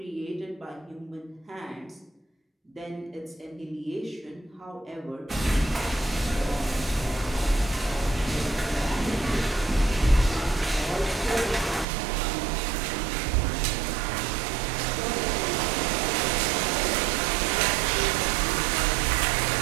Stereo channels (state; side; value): drops out; left; at 11.9 s